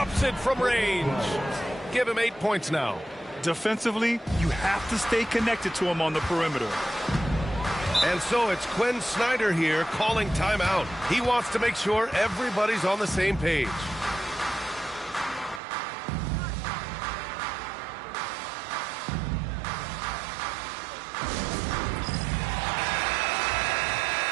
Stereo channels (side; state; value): left; drops out; at 15.6 s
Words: it from range. Give him 8 points now. Defensively, you have to stay connected to him on the perimeter. And so it's Quinn Snyder here calling timeout. He wants to make sure everybody's on the same page.